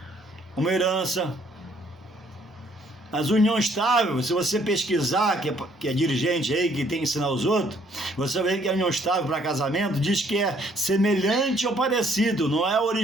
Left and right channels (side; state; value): both; normal; correlation 0.64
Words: uma herança. Mas união estável, se você pesquisar, que é dirigente aí, que tem que ensinar os outros, você vai ver que a união estável para casamento diz que é semelhante ou parecido, não é o